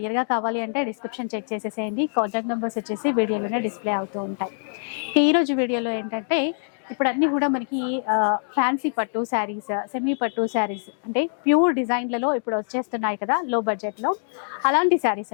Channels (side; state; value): right; silent; digital silence